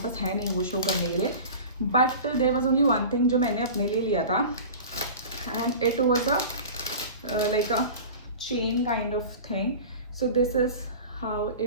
पास है नहीं वो शो करने के लिए। But there was only one thing जो मैंने अपने लिए लिया था and it was a like a chain kind of thing. So this is how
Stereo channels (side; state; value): both; inverted; correlation -0.36